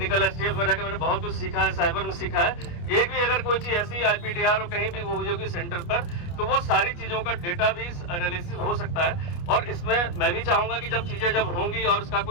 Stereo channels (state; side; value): late; right; 29 ms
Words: STF में रहकर मैंने बहुत कुछ सीखा है, साइबर में सीखा है। एक भी अगर कोई चीज ऐसी IPDR और कहीं भी वो हुई होगी सेंटर पर, तो वो सारी चीजों का डेटा भी एनालिसिस हो सकता है। और इसमें मैं भी चाहूंगा कि जब चीजें जब होंगी और उसका